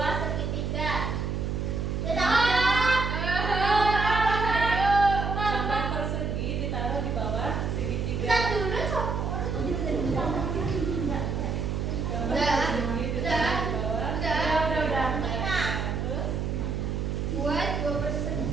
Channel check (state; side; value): noise; right; hum, 1 dB below the sound